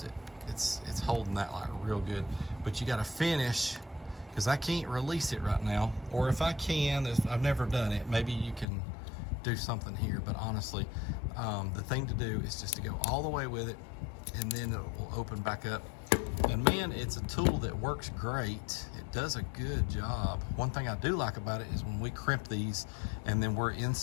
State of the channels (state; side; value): drops out; right; at 8.7 s